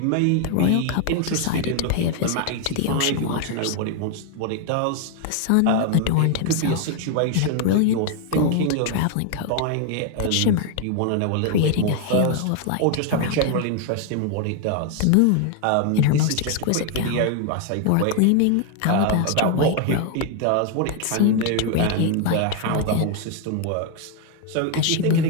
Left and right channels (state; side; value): different; both; correlation 0.00